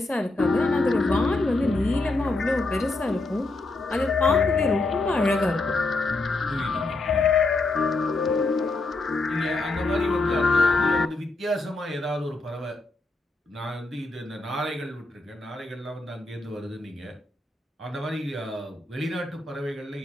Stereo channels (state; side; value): quieter; right; 3.1 dB